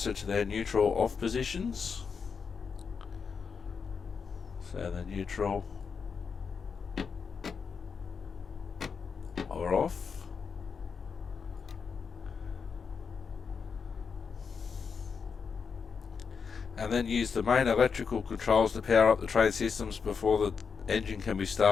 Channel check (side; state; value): right; quieter; 5.8 dB